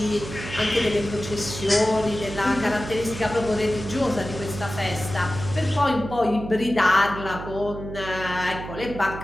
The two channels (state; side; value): noise; right; hum, 10 dB below the sound